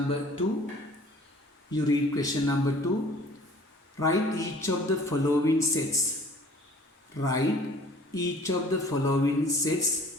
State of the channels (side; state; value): both; normal; correlation 0.52